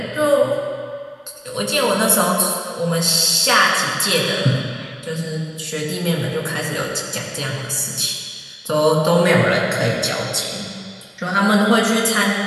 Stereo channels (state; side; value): identical; both; correlation 1.00